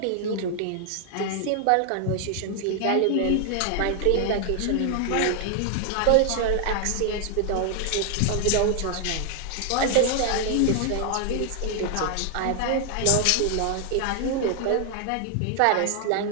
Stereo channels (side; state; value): both; different; correlation 0.00